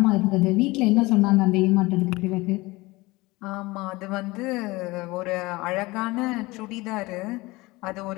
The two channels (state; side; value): quieter; right; 21.7 dB